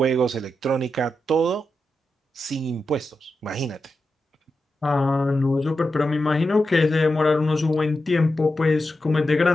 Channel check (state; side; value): normal; both; correlation 0.89